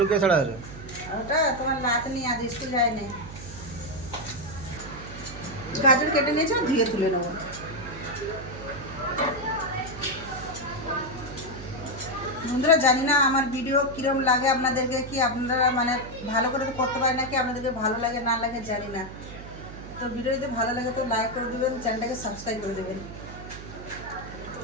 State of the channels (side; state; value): right; noise; hum, 13 dB below the sound